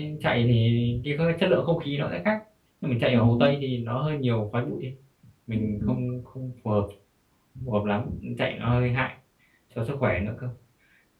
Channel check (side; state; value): both; identical; correlation 1.00